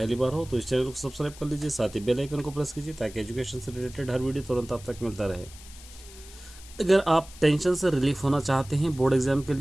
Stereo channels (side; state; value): left; noise; hiss, 19 dB below the sound